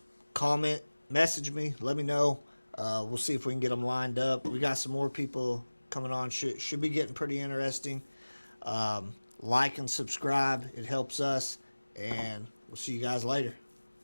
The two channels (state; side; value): inverted; both; correlation -1.00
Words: comment, message me, let me know. We'll see if we can get them lined up. We got some more people coming on. Should be getting pretty interesting. Like and subscribe. It helps us. And we'll see you guys later.